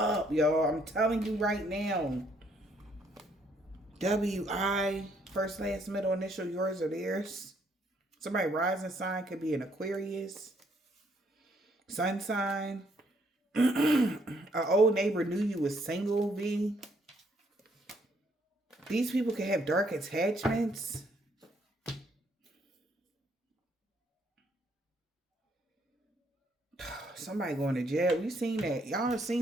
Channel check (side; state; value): both; normal; correlation 0.69